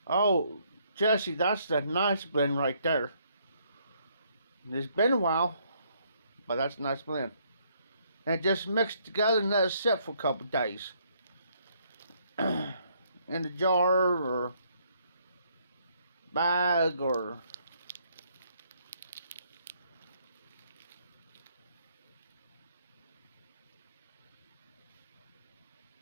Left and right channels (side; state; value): both; inverted; correlation -0.69